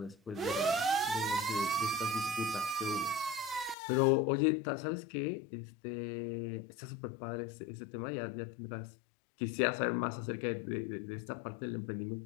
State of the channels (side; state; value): right; drops out; at 3.8 s